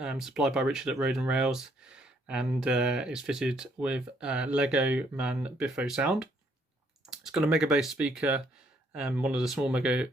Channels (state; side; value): normal; both; correlation 0.68